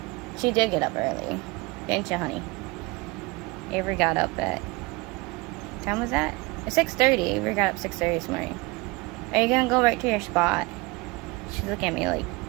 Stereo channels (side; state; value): left; quieter; 24.6 dB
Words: she did get up early. Didn't you, honey? Avery got up at... What time was that? 6:30. Avery got up 6:30 this morning. Are you gonna go right to your spot? She's looking at me like...